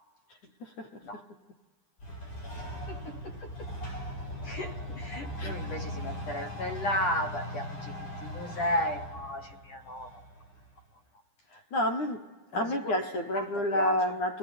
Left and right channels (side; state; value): right; late; 9.9 ms